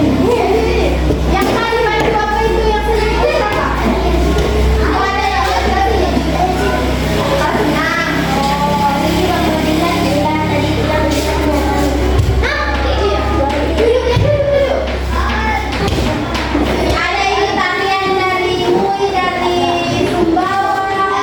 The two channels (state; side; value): identical; both; correlation 1.00